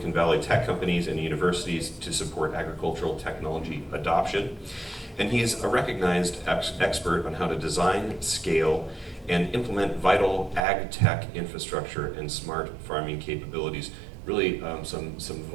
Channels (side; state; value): left; drops out; at 10.6 s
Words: Valley tech companies, and universities to support agricultural technology adoption. And he's a recognized expert on how to design, scale, and implement vital ag tech infrastructure and smart farming capabilities. Really some